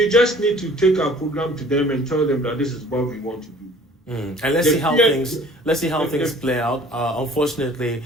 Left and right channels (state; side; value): normal; both; correlation 0.51